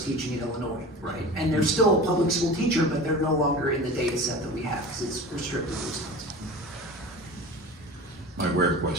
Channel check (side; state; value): both; normal; correlation 0.34